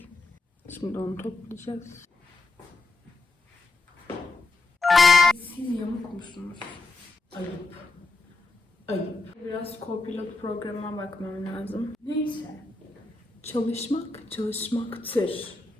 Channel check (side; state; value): right; quieter; 3.3 dB